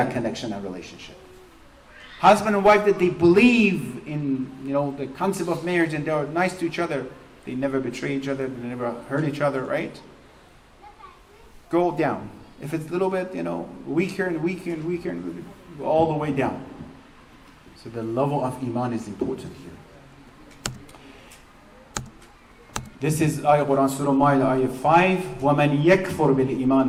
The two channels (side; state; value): both; identical; correlation 1.00